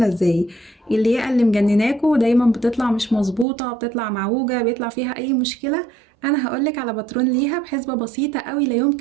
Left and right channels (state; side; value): drops out; left; at 3.5 s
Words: ازاي. الياقة اللي مجنناكوا دايما بتطلع مش مظبوطه، بتطلع معوجه، بيطلع فيها اي مشكله. انا هقولك على باترون ليها بحسبه بسيطه قوي لا